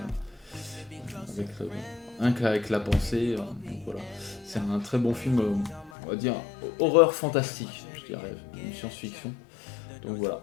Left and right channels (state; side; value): drops out; right; at 5.9 s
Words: avec la pensée. Donc voilà, c'est un très bon film, on va dire horreur fantastique, je dirais, une science-fiction. Donc voilà,